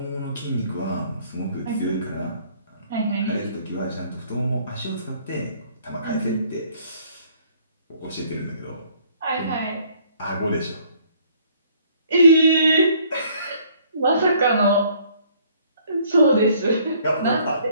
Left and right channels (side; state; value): both; inverted; correlation -0.61